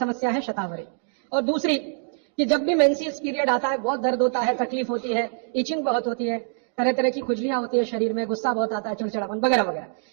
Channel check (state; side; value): silent; left; digital silence